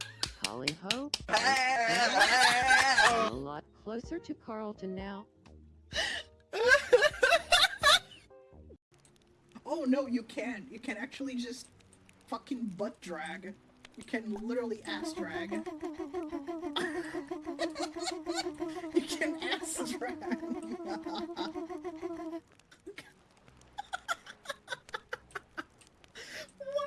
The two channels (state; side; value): identical; both; correlation 1.00